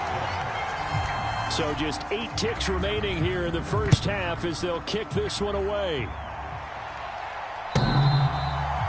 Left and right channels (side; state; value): both; identical; correlation 1.00